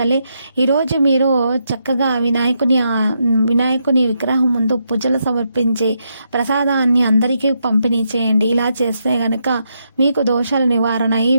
ఈరోజు మీరు చక్కగా వినాయకుని విగ్రహం ముందు పూజలు సమర్పించి ప్రసాదాన్ని అందరికీ పంపిణీ చేయండి. ఇలా చేస్తే గనక మీకు దోషాల నివారణ అయ్యి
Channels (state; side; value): inverted; both; correlation -0.81